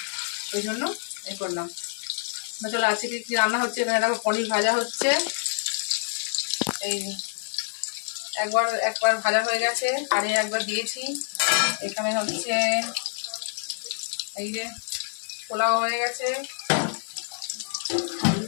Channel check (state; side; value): silent; right; 56 dB below the other